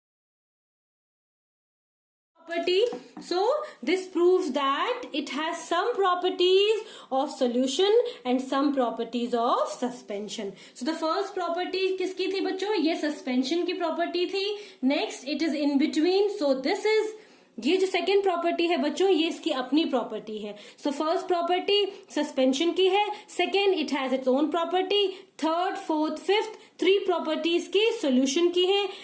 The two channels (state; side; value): identical; both; correlation 1.00